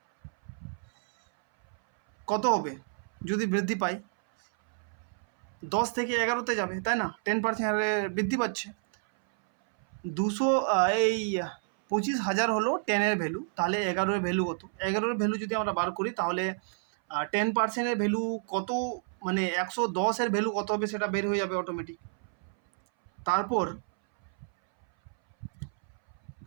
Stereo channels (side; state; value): left; silent; 58 dB below the other